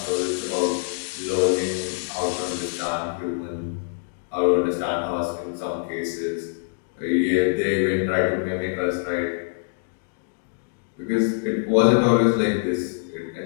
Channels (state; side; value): silent; right; digital silence